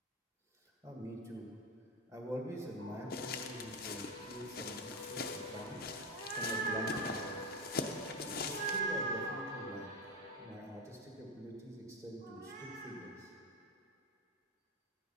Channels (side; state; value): both; normal; correlation 0.16